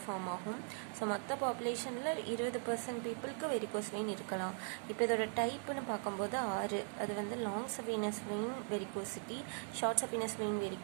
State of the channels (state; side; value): silent; left; 51 dB below the other